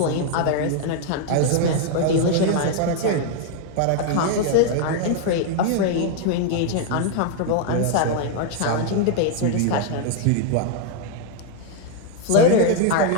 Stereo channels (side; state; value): both; different; correlation 0.00